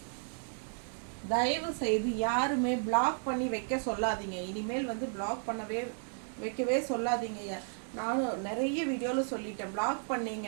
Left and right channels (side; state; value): left; silent; 55 dB below the other